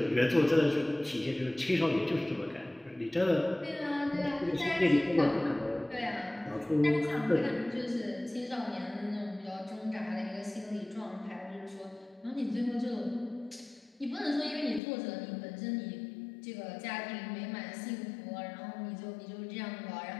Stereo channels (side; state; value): right; drops out; at 14.8 s